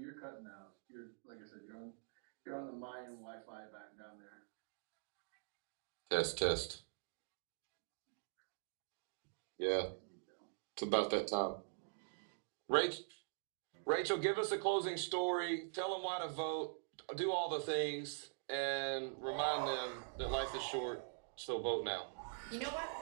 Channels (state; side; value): silent; left; digital silence